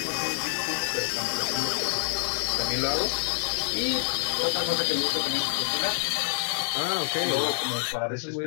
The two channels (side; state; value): right; silent; digital silence